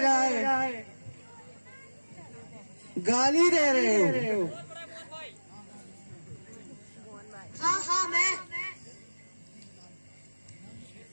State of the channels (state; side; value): inverted; both; correlation -1.00